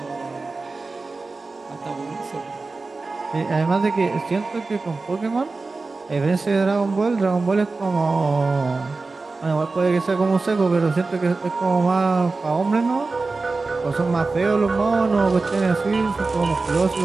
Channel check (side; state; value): left; quieter; 3.8 dB